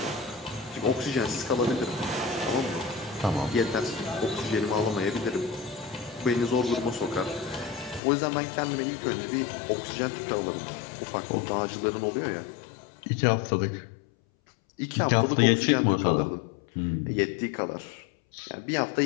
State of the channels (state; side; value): drops out; right; at 8.0 s